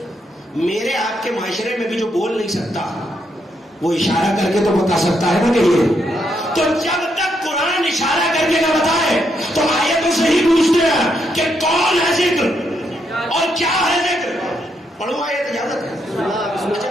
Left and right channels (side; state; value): both; normal; correlation 0.78